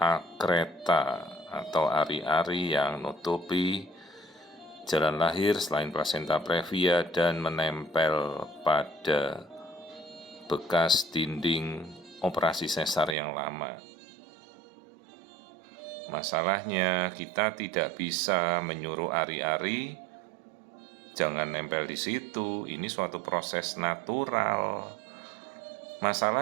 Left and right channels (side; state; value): left; drops out; at 13.2 s